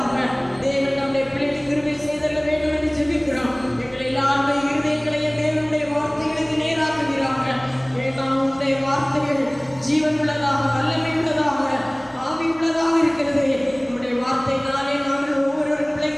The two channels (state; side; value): noise; right; hum, 27 dB below the sound